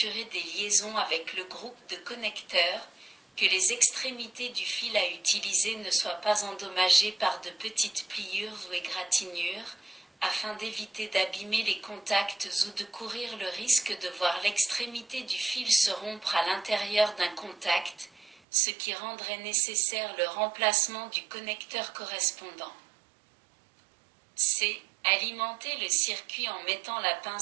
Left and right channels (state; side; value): drops out; left; at 18.4 s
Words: des liaisons avec le groupe de connecteurs, que les extrémités du fil à utiliser ne soient pas endommagées par de petites pliures ou égratignures, afin d'éviter d'abîmer les contacts ou de courir le risque de voir l'extrémité du fil se rompre à l'intérieur d'un contact, ce qui rendrait nécessaire le remplacement du connecteur correspondant. C. Alimenter le circuit en mettant la